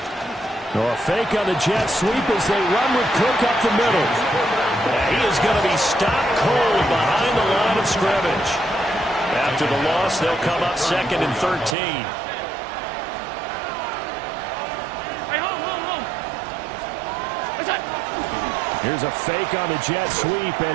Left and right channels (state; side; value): drops out; left; at 11.8 s